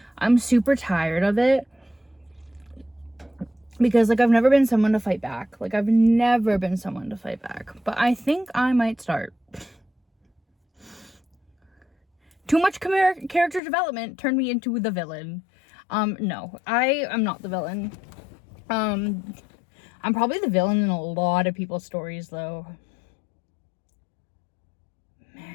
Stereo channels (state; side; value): drops out; right; at 13.6 s